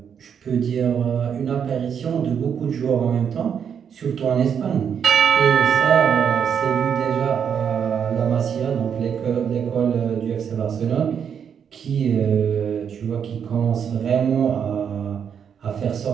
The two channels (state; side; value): quieter; left; 7.7 dB